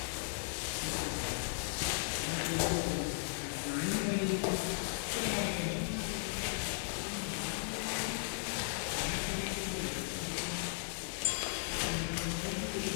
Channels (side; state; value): right; silent; 53 dB below the other